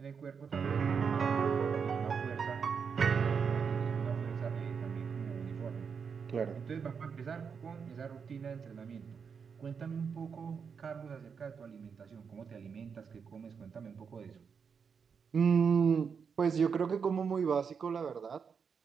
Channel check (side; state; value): left; quieter; 6.3 dB